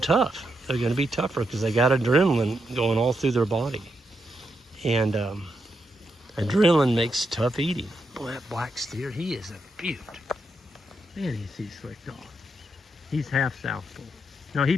They're going to be tougher because they got adrenaline going all through their body. And adrenaline makes tough eating. Boy, that black steer, he is a beaut. Man, he's slick dog. He's half Southpaw. No,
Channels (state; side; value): normal; both; correlation 0.83